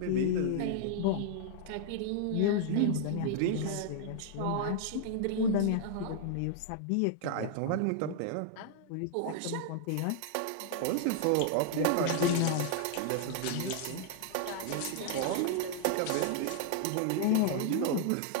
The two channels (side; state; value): both; different; correlation 0.00